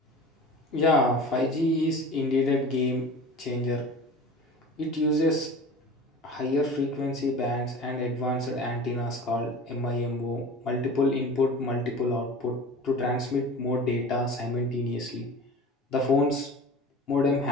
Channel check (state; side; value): normal; both; correlation 0.37